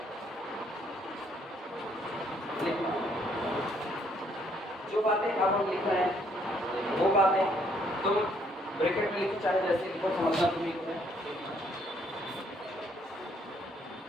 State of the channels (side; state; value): both; normal; correlation 0.67